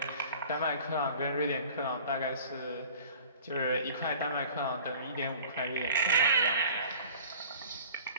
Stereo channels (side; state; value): both; inverted; correlation -0.46